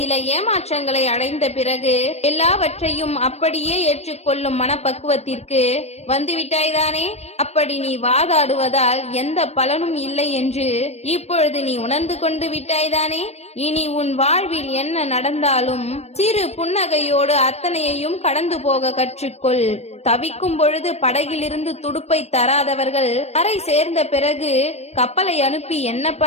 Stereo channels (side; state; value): right; late; 0.31 ms